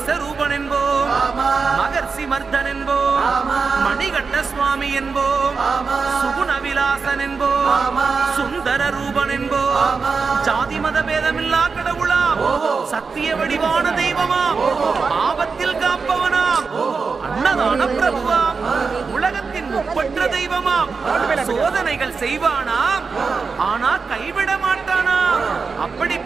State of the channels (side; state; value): left; quieter; 4.9 dB